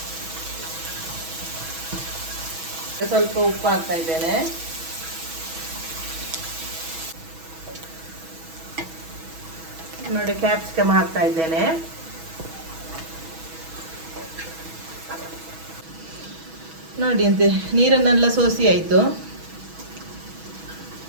ಸ್ವಲ್ಪ ಉಪ್ಪು ಹಾಕ್ತಾ ಇದ್ದೇನೆ. ನೋಡಿ, ಕ್ಯಾಪ್ಸಿಕಮ್ ಹಾಕ್ತಾ ಇದ್ದೇನೆ. ನೋಡಿ ಅಂತೆ ನೀರನ್ನೆಲ್ಲ ಸೋಸಿ ಆಯಿತು.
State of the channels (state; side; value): late; left; 6.2 ms